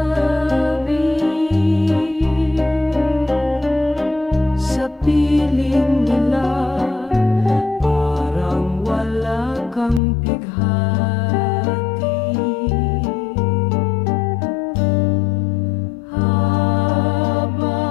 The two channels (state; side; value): drops out; right; at 10.0 s